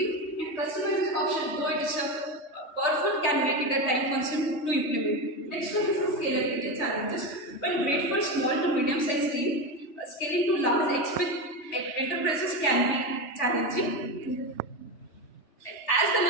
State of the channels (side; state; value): right; late; 3.5 ms